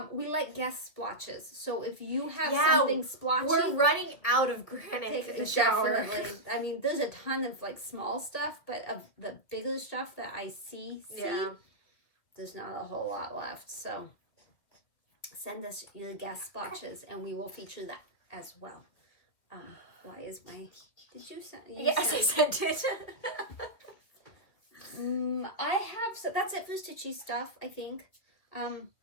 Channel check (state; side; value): late; right; 2.3 ms